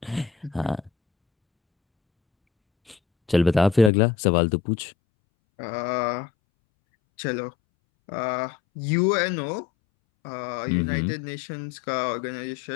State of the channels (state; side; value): drops out; right; at 3.9 s